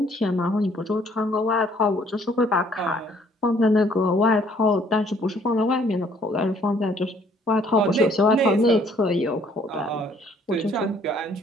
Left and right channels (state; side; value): normal; both; correlation 0.62